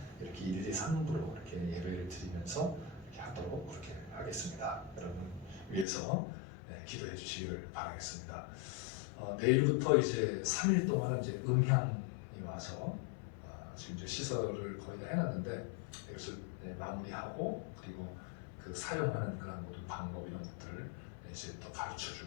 이렇게 1, 2, 3부로 이렇게 예배를 드리면서 이렇게 하도록 그렇게 하겠습니다. 여러분 위해서 기도해 주시기를 바라겠습니다. 내일부터 이제 3일 동안은 이제 음향이 와서 지금 이제 시설을 거의 다 해놨는데 이것을 마무리하고 그리고 그 사용하는 그런 모든 방법 이런 것들을 이제 또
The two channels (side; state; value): right; drops out; at 5.9 s